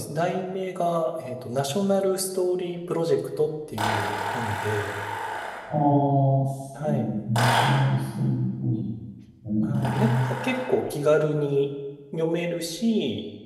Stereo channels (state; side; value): identical; both; correlation 1.00